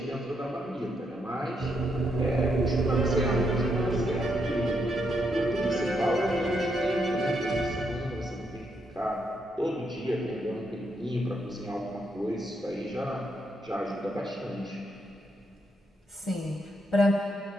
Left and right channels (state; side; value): normal; both; correlation 0.79